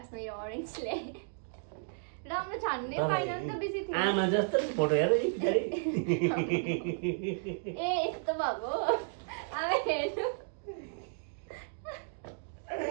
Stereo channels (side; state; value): left; silent; digital silence